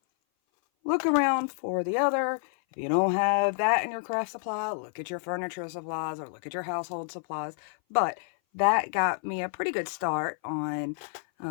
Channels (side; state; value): right; silent; 57 dB below the other